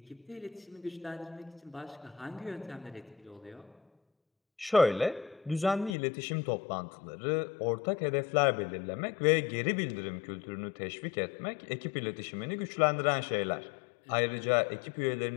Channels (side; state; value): right; drops out; at 6.0 s